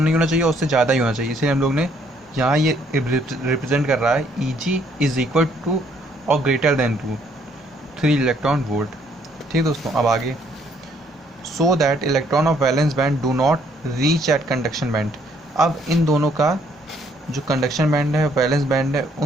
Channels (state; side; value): normal; both; correlation 0.66